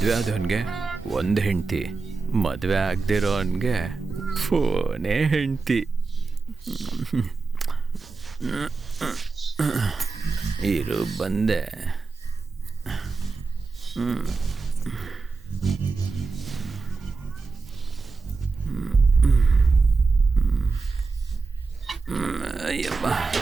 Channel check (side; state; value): left; quieter; 4.2 dB